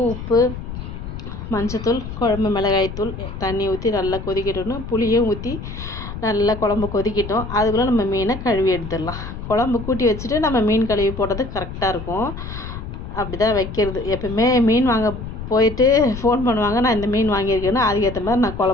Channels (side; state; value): left; noise; rumble, 9 dB below the sound